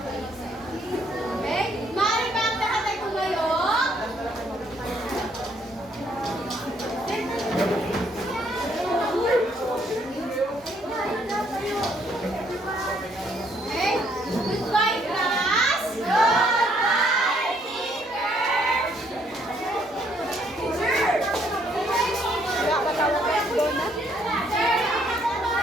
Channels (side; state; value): both; normal; correlation 0.68